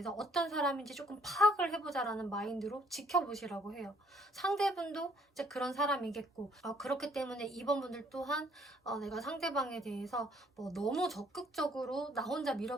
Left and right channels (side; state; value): both; normal; correlation 0.63